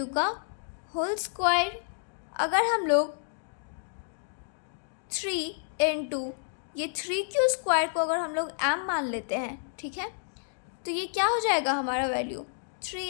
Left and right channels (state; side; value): silent; right; digital silence